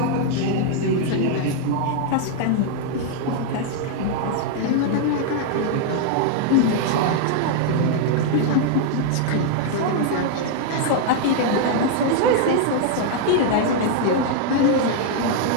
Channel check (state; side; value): different; both; correlation 0.00